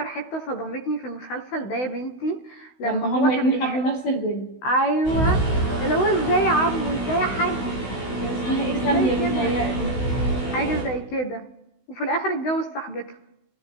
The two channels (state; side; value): late; right; 16 ms